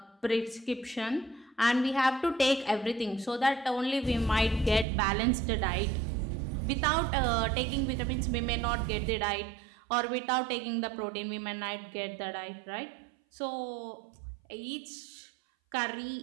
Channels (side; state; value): left; drops out; at 4.9 s